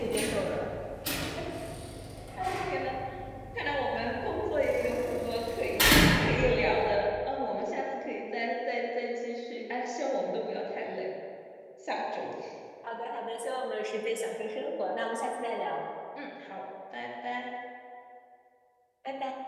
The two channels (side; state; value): both; identical; correlation 1.00